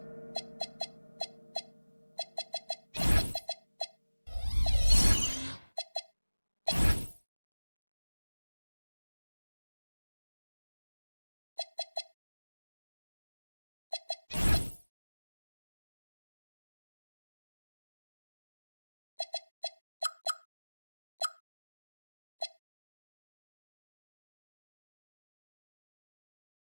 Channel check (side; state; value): both; inverted; correlation -1.00